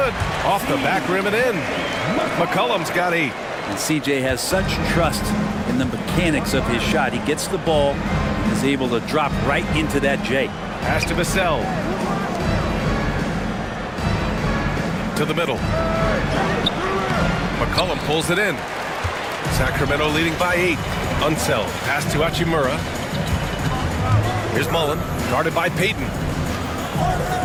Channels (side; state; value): both; identical; correlation 1.00